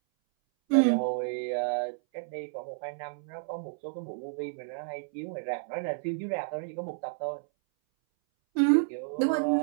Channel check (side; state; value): left; silent; 57 dB below the other